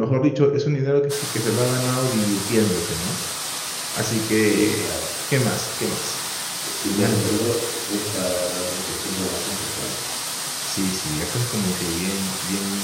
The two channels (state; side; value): identical; both; correlation 1.00